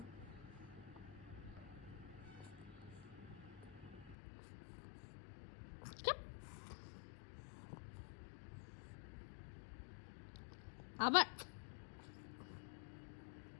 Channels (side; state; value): right; drops out; at 4.2 s